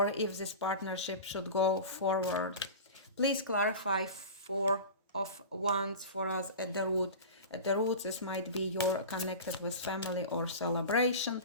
if this partnership should go forward. Please clarify Four of Wands for us at the root. At the root, this might be you're connected with family or celebration.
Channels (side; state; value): both; inverted; correlation -0.31